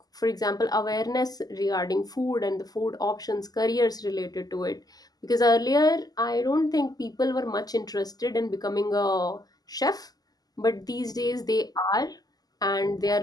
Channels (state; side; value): late; right; 0.18 ms